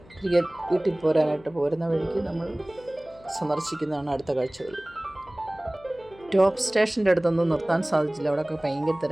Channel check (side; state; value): left; noise; hum, 24 dB below the sound